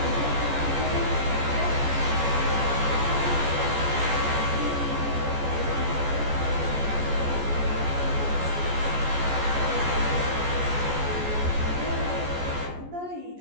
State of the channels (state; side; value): late; left; 14 ms